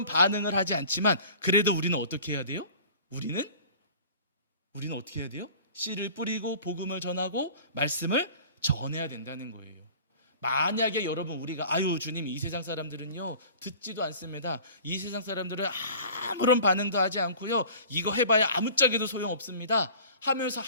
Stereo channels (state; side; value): inverted; both; correlation -0.44